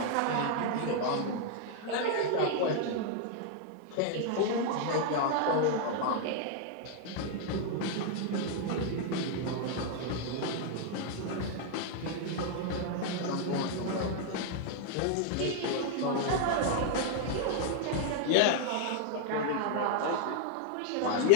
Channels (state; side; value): different; both; correlation 0.00